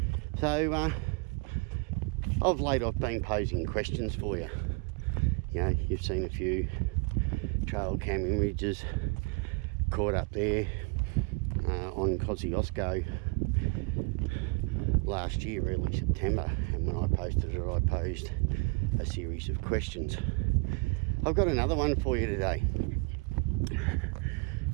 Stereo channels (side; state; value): left; quieter; 30.9 dB